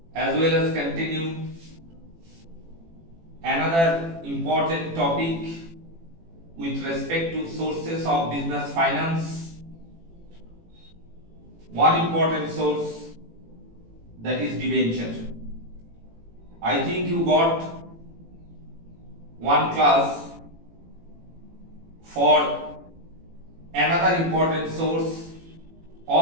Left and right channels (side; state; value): left; late; 18 ms